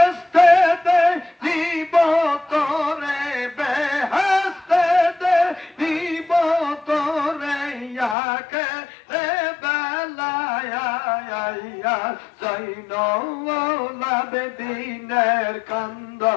দে নিব তোরে বেহেস্তে দে নিব তোরে ইয়াকে রে বেলায়া জৈনওয়ালাবে দিনের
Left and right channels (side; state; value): right; drops out; at 8.2 s